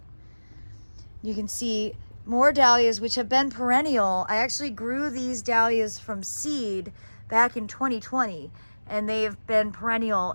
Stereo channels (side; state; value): both; inverted; correlation -1.00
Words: You can see more dahlias, which have been perennial. I actually grew these dahlias from seed back in 2020, and they've been perennial